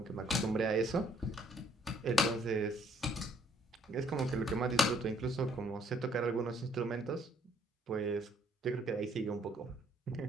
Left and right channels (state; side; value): normal; both; correlation 0.64